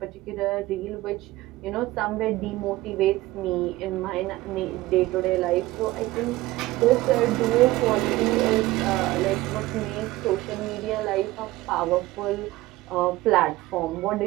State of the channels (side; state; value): left; quieter; 18.2 dB